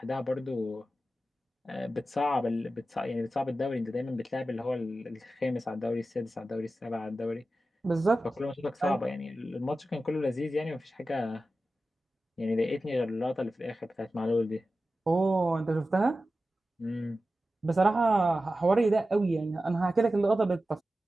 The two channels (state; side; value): normal; both; correlation 0.93